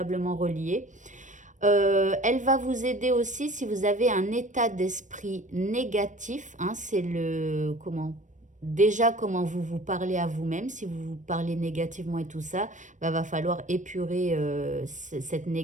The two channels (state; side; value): late; left; 0.36 ms